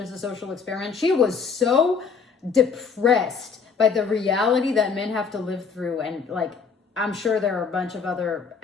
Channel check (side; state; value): right; quieter; 5.5 dB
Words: a social experiment. She was so depressed by the reality that men have to live through. And I'm sure there are a bunch of other